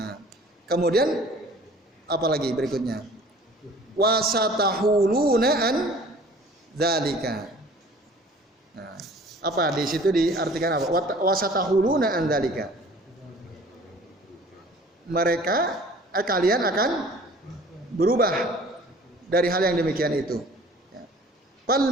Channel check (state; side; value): normal; both; correlation 0.49